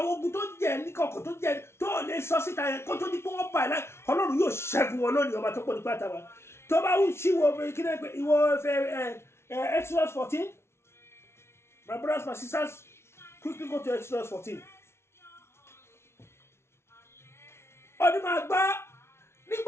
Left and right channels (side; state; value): right; late; 0.12 ms